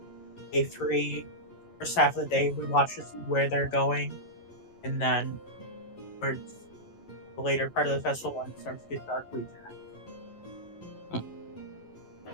Day 3, first half of the day, we watch to see where they're going, and then towards the later part of the festival, when it starts to get dark, we attack.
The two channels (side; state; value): right; late; 11 ms